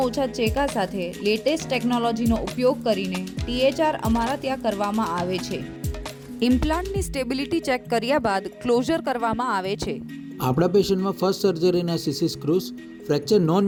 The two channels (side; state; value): both; identical; correlation 1.00